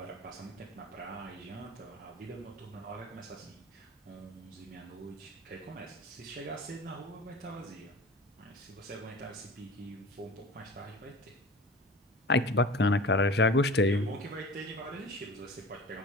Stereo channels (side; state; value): both; normal; correlation 0.38